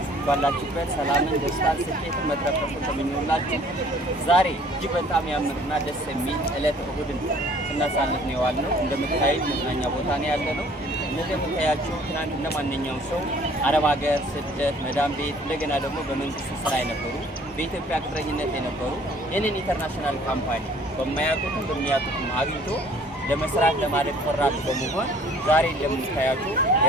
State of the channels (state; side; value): normal; both; correlation 0.55